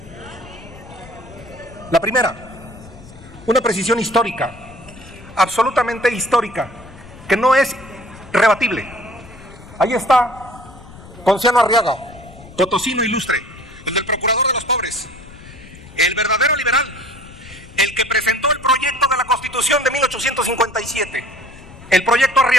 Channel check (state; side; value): noise; left; rumble, 19 dB below the sound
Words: La primera, una precisión histórica, absolutamente histórica, que no es rebatible. Ahí está Ponciano Arriaga, potosino ilustre, el del procurador de los pobres, el verdadero liberal, el que presentó el proyecto de la Constitución de 1857, el proyecto